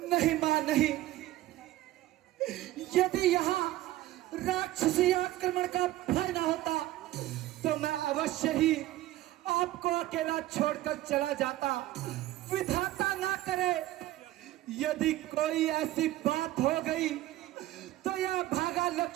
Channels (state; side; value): quieter; left; 15.6 dB